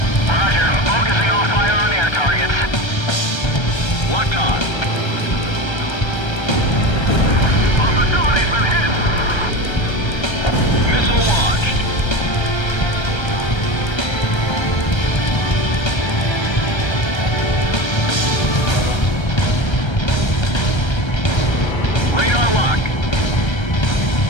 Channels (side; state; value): right; late; 1.3 ms